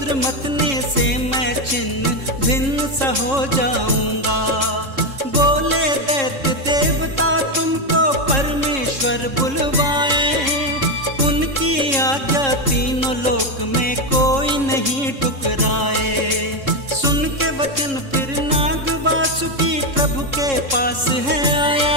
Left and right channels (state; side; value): late; left; 3.7 ms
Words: मथने से मैं छिन्न भिन्न सा हो जाऊंगा। बोले दैत्य देवता तुमको परमेश्वर बुलवाए, उनकी आज्ञा तीनों लोक में कोई नहीं टुकराए। सुन के वचन फिर नाग वासुकी प्रभु के पास है आया,